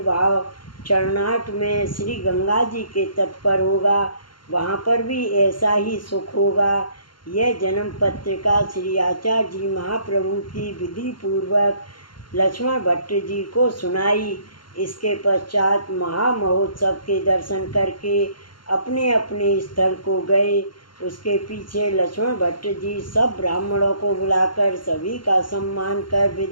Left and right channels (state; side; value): late; right; 0.72 ms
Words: चरनाट में श्री गंगा जी के तट पर होगा, वहाँ पर भी ऐसा ही सुख होगा। यह जन्म पत्रिका श्री आचार्य जी महाप्रभु की विधि पूर्वक लक्ष्मण भट्ट जी को सुनाई। इसके पश्चात महामहोत्सव के दर्शन करके अपने अपने स्थल को गए। उसके पीछे लक्ष्मण भट्ट जी सब ब्राह्मणों को बुलाकर सभी का सम्मान कर